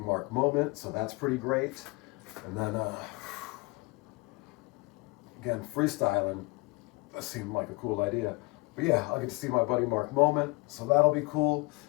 Moment, so that's pretty great. And then, again, freestyling, that seemed like a cool idea. But yeah, I'll get to see my buddy Mark Moment, so that'll be cool.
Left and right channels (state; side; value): quieter; right; 25.9 dB